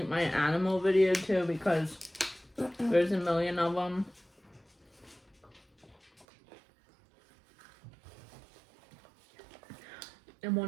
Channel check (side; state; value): left; drops out; at 6.2 s